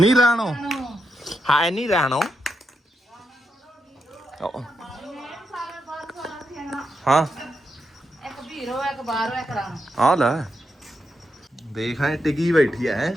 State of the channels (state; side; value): normal; both; correlation 0.84